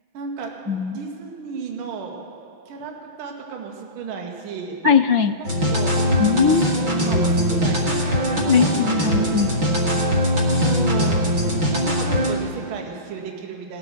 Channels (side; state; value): left; late; 6.0 ms